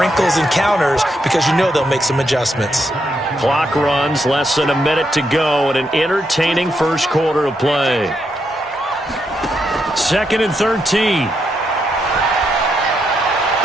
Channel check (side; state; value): both; normal; correlation 0.80